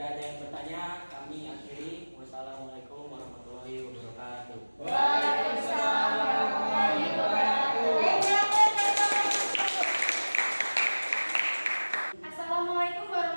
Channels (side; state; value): both; inverted; correlation -1.00